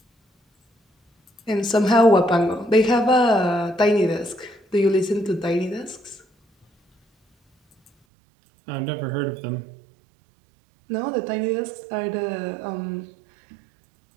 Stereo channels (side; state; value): left; drops out; at 7.9 s